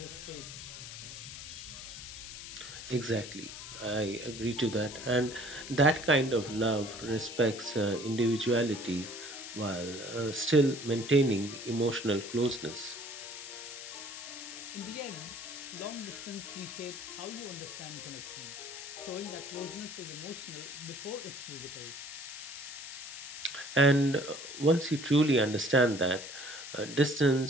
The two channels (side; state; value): left; noise; hiss, 11 dB below the sound